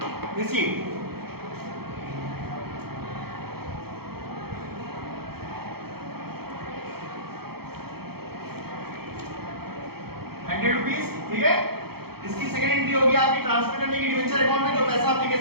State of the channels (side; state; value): left; late; 0.95 ms